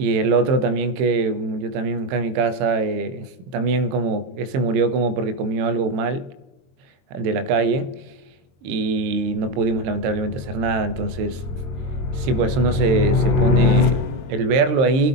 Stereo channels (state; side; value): late; left; 23 ms